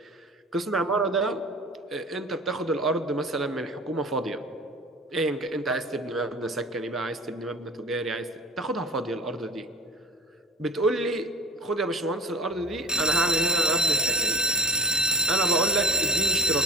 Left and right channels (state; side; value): normal; both; correlation 0.36